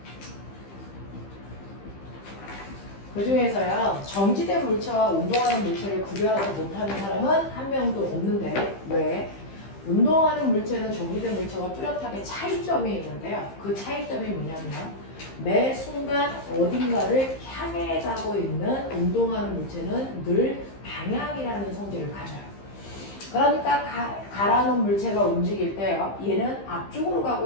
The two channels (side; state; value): right; late; 15 ms